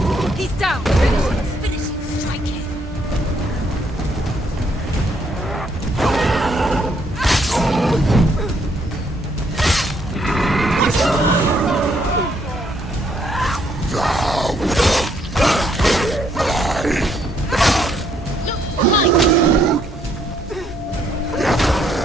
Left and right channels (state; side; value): normal; both; correlation 0.70